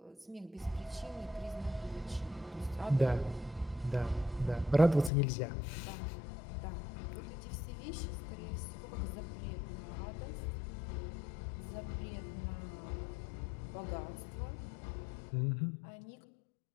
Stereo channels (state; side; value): drops out; right; at 5.1 s